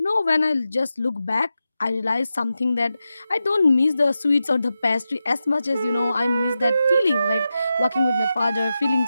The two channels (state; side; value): inverted; both; correlation -0.91